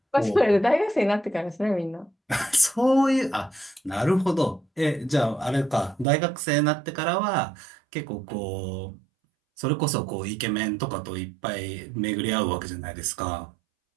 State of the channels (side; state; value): left; drops out; at 6.1 s